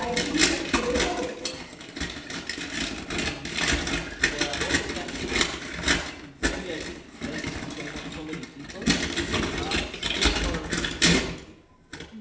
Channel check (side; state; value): both; identical; correlation 1.00